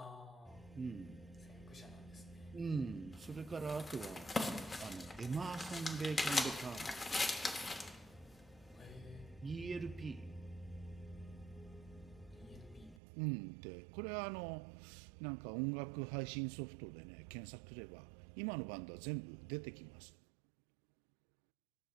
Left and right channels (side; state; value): left; drops out; at 13.0 s